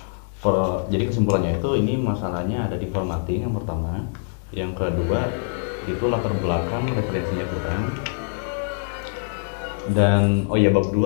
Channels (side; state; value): right; silent; digital silence